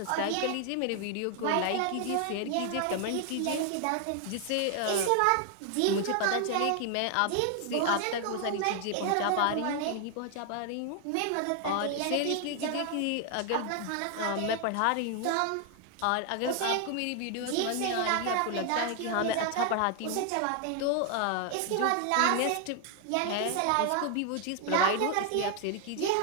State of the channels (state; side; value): different; both; correlation 0.00